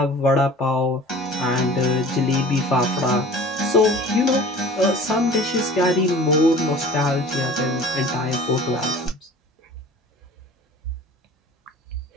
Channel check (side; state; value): both; normal; correlation 0.43